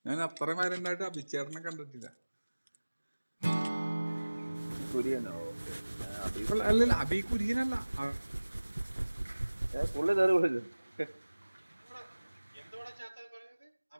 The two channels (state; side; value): inverted; both; correlation -1.00